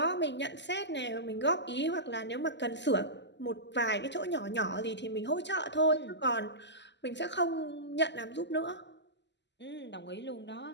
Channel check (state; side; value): late; right; 0.51 ms